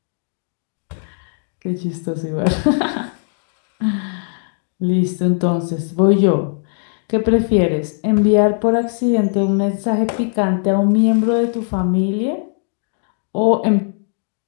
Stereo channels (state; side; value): silent; right; digital silence